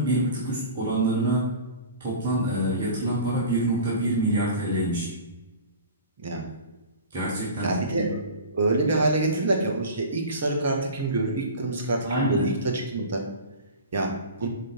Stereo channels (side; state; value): both; inverted; correlation -0.36